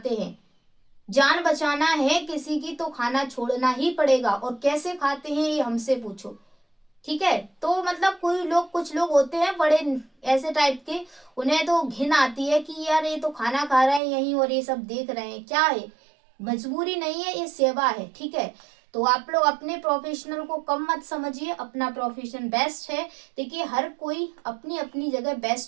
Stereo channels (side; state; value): left; drops out; at 14.0 s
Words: हैं। जान बचाना है किसी की तो खाना छोड़ना ही पड़ेगा, और कैसे खाते हैं ये हमसे पूछो, ठीक है। तो मतलब कोई लोग, कुछ लोग होते हैं बड़े ऐसे टाइप के, उन्हें तो घिन आती है कि यार ये तो खाना खा रहे हैं यहीं और ये सब देख रहे हैं, क्या है, मजबूरी नहीं है, ये सेवा है, ठीक है। तो आप लोग अपने प्रोफेशनल को कम मत समझिए, अपना प्रोफेशन बेस्ट है। देखिए, हर कोई अपनी अपनी जगह